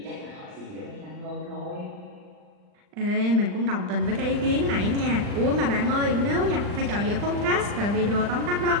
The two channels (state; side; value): late; left; 39 ms